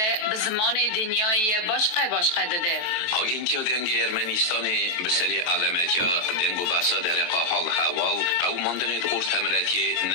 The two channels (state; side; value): late; right; 23 ms